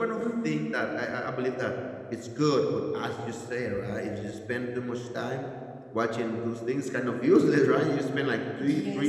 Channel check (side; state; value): both; identical; correlation 1.00